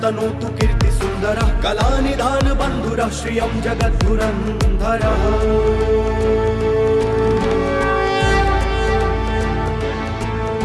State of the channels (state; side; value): identical; both; correlation 1.00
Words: कीर्ति सुन्दरः कलानिधान बन्धुरः श्रियं जगद्धुरन्धरः।